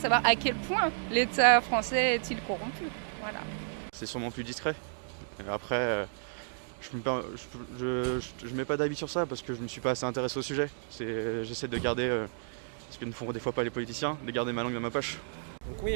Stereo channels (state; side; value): silent; left; digital silence